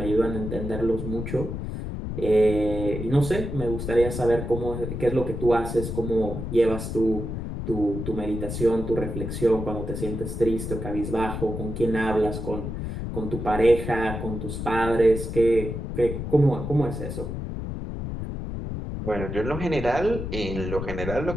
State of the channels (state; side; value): noise; left; rumble, 5 dB below the sound